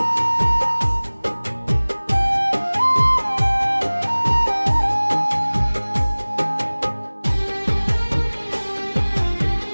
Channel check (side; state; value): both; inverted; correlation -1.00